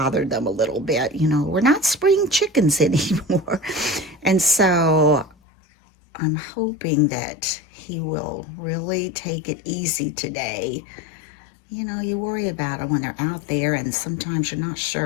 them a little bit. You know, we're not spring chickens anymore. And so I'm hoping that he will really take it easy today. You know, you worry about it when they're out there, and sometimes you're not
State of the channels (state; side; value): drops out; right; at 5.4 s